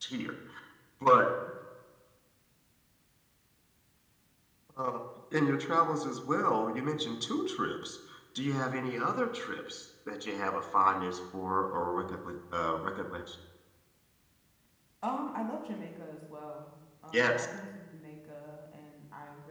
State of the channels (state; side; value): identical; both; correlation 1.00